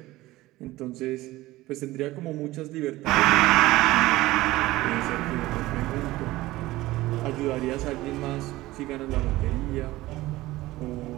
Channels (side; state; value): left; quieter; 17.9 dB